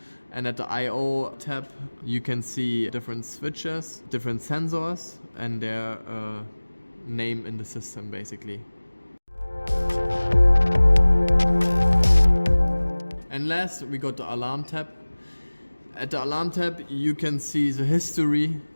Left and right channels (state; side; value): inverted; both; correlation -1.00